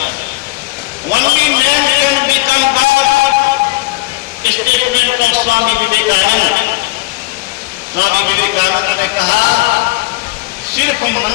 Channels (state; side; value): quieter; right; 20.5 dB